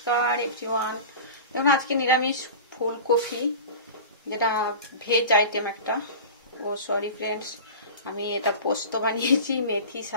everyone. দেখুন আজকে নিরামিষ ফুলকপি, যেটা ভেজ আইটেম একটা। সরি ফ্রেন্ডস, আমি এটা পোস্ত বানিয়েছি মেথি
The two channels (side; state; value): both; inverted; correlation -0.33